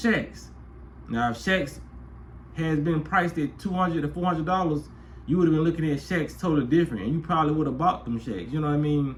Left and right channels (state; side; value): identical; both; correlation 1.00